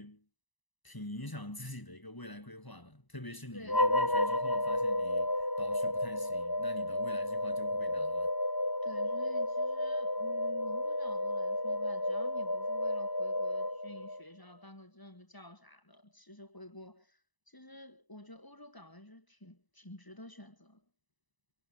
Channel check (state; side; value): late; right; 1.0 ms